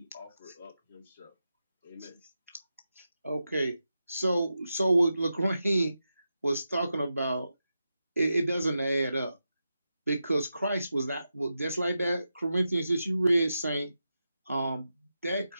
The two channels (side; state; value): both; inverted; correlation -0.89